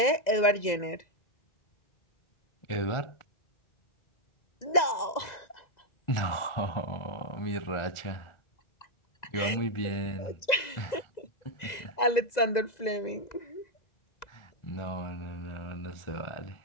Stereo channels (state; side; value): late; right; 2.0 ms